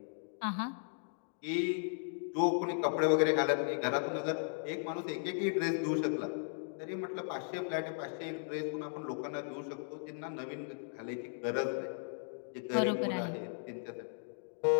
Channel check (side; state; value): right; silent; digital silence